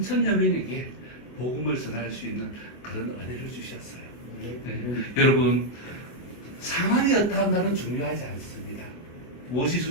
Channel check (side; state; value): right; late; 24 ms